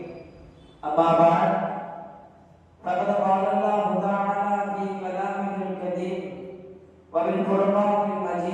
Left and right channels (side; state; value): both; identical; correlation 1.00